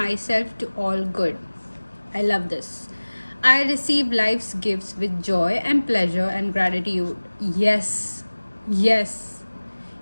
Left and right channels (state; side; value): inverted; both; correlation -1.00